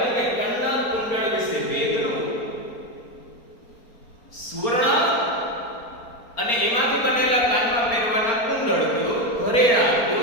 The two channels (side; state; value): right; late; 4.3 ms